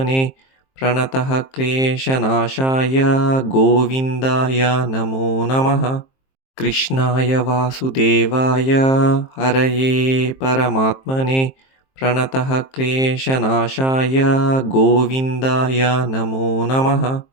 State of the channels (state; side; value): late; right; 23 ms